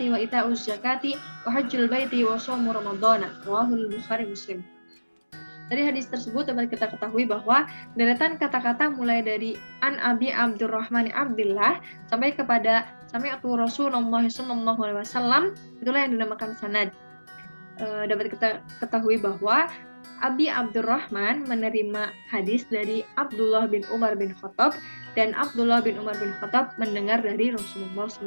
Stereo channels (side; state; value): both; inverted; correlation -1.00